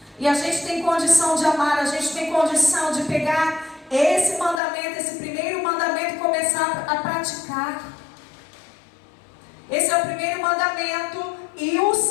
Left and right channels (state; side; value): drops out; right; at 4.6 s